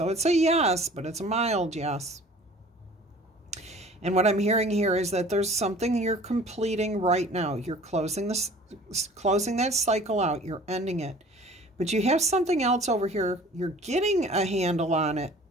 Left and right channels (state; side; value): normal; both; correlation 0.48